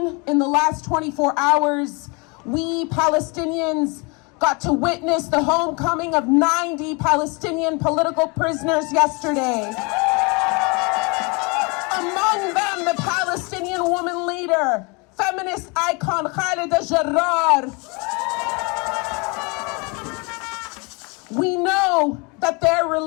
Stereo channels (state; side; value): quieter; right; 30.2 dB